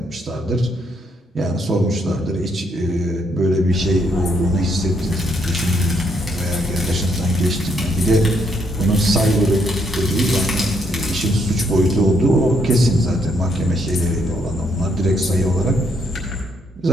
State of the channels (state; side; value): normal; both; correlation 0.73